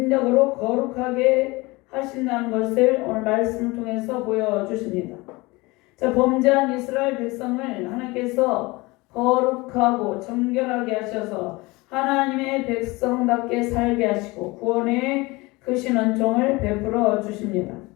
거룩하게 하신다는 것을 오늘 말씀을 통해서 보여주십니다. 자, 범죄한 이스라엘 백성을 하나님께서 거룩하고 정결하게 하셔서 하나님의 백성답게 살게 하시고 구원의 크신 은총을 베풀어 주십니다.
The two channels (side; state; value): right; quieter; 23.2 dB